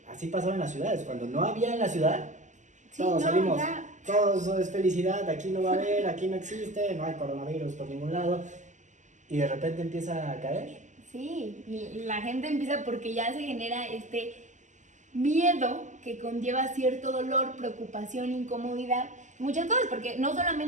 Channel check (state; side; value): late; left; 0.35 ms